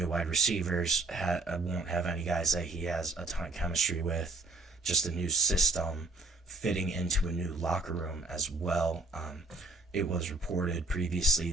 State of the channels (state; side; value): quieter; left; 3.3 dB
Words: wide receivers, won't have any guys that he has a ton of chemistry with, just a new system, fitting into a new locker room as well. It was reported